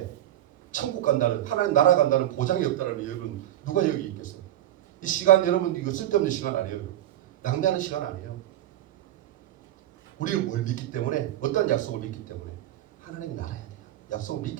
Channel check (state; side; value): quieter; left; 12.9 dB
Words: 천국 간다는, 하나님 나라 간다는 보장이 없다는 여러분 누가 여기 있겠어요? 이 시간 여러분 이거 쓸데없는 시간 아니에요. 낭비하는 시간 아니에요. 우리는 뭘 믿기 때문에 어떤 약속을 믿기 때문에 하나님이 나라야 돼요. 약속을